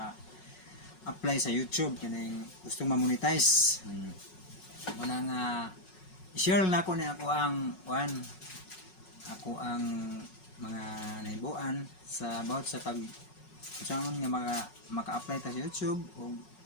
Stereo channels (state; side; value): late; right; 5.4 ms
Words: sa YouTube. Kaning gusto ma-monetize. Muna nga i-share na ako na ako ang mga naibuan sa about sa pag saan nga maka-apply ta sa YouTube o